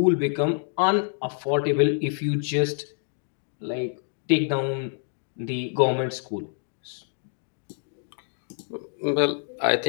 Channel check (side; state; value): right; silent; digital silence